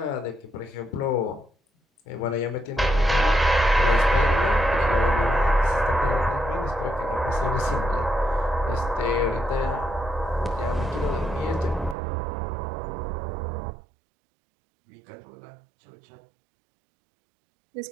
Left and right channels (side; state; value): left; drops out; at 12.0 s